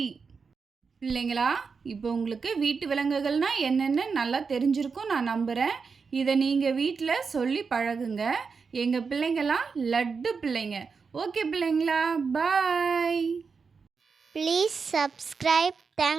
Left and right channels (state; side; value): quieter; left; 5.2 dB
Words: பிள்ளைங்களா, இப்போ உங்களுக்கு வீட்டு விலங்குகள்னா என்னென்னு நல்லா தெரிஞ்சிருக்கும் நான் நம்புகிறேன். இதை நீங்கள் வீட்டில் சொல்லி பழகுங்க. எங்கள் பிள்ளைங்களாம் லட்டு பிள்ளைங்க. ஓகே பிள்ளைங்களா, பாய். Please subscribe.